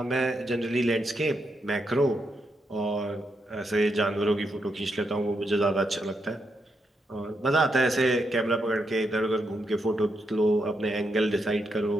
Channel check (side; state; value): both; normal; correlation 0.82